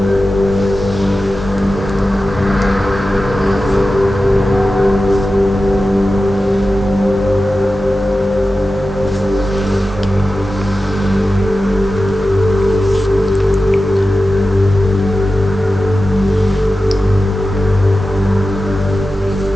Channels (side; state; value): both; normal; correlation 0.93